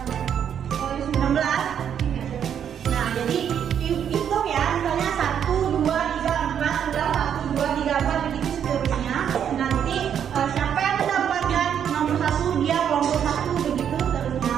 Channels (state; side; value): quieter; left; 8.7 dB